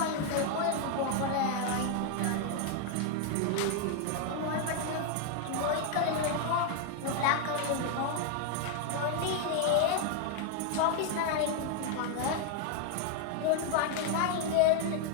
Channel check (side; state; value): both; different; correlation 0.00